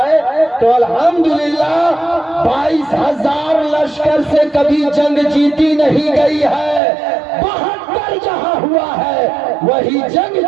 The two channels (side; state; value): left; drops out; at 6.8 s